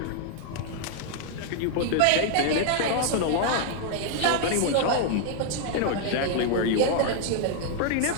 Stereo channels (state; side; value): different; both; correlation 0.00